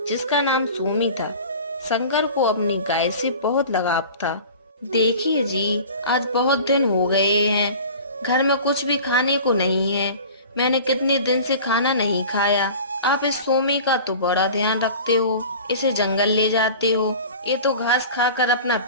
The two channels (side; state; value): both; inverted; correlation -0.40